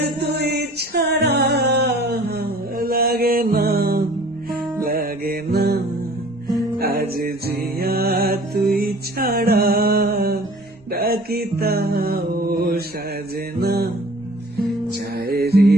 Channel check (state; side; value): normal; both; correlation 0.48